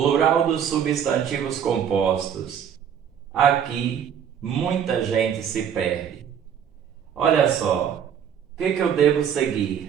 dos substantivos compostos. Aqui muita gente se perde. Olha só, o que eu devo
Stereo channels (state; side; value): quieter; left; 8.5 dB